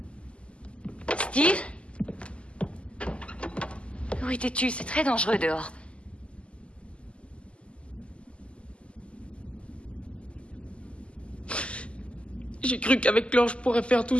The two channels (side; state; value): right; late; 0.055 ms